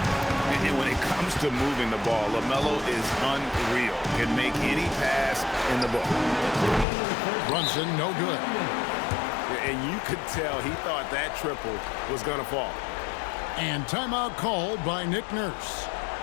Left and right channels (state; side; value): drops out; right; at 6.9 s